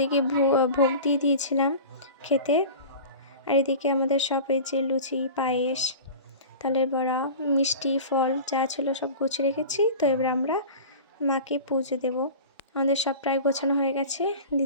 ভোগ দিয়ে দিয়েছিলাম খেতে। আর এদিকে আমাদের সব এই যে লুচি, পায়েস, তালের বড়া, মিষ্টি, ফল যা ছিল সব গুছিয়ে রেখেছি। তো এবার আমরা মাকে পুজো দেব। আমাদের সব প্রায় গোছানো হয়ে গেছে,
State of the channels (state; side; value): inverted; both; correlation -0.35